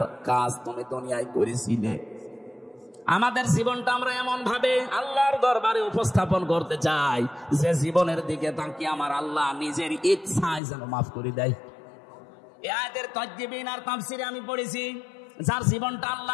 কাজ তুমি দুনিয়ায় করেছিলে। আমাদের জীবনটা আমরা এমন ভাবে আল্লাহর দরবারে উপস্থাপন করতে চাই যে জীবনের দিকে তাকিয়ে আমার আল্লাহ নিজের ইচ্ছায় যেন মাফ করে দেয়। এই আয়াতের তাফসীর আর তাফসীরে আমি পড়েছি, যার জীবনটা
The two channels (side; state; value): right; drops out; at 10.6 s